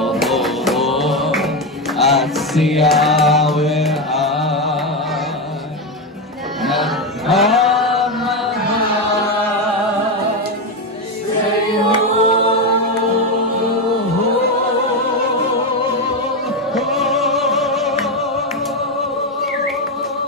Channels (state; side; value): normal; both; correlation 0.11